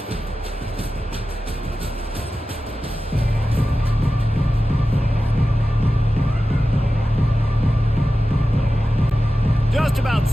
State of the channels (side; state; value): both; normal; correlation 0.94